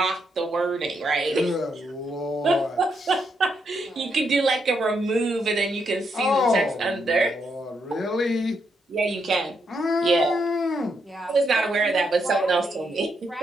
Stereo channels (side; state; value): both; normal; correlation 0.79